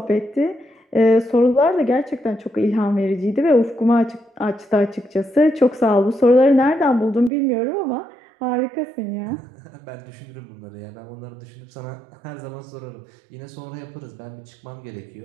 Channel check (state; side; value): drops out; left; at 7.3 s